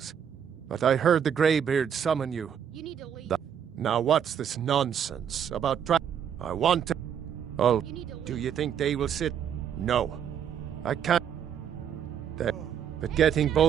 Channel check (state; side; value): quieter; left; 8.6 dB